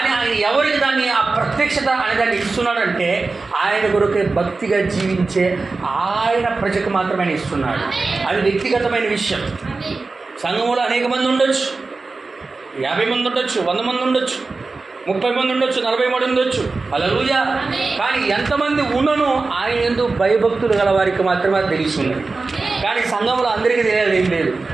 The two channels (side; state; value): left; quieter; 3.8 dB